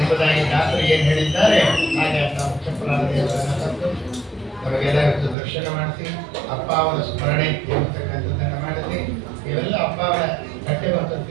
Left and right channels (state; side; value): drops out; left; at 5.4 s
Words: ದಾಸರು ಏನು ಹೇಳಿದ್ದಾರೆ ಹಾಗೆ ಅಂತ ಮುಖ್ಯ ಪ್ರಾಣದೇವರನ್ನು ತಂದು ನಮಗೆಲ್ಲ ಇವತ್ತು ದರ್ಶನ ಮಾಡಿಸಿ ಅಪ್ಪ ಅವರ ಸ್ಮರಣೆ ಎಂಬತಕ್ಕಂಥದ್ದನ್ನು ಮಾಡಿಸಿ ಇವೆಲ್ಲ ಅಪ್ಪ ಅವರ ಕಟ್ಟೆ